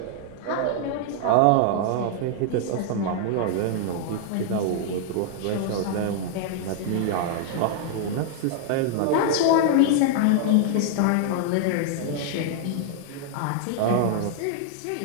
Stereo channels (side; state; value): both; different; correlation 0.00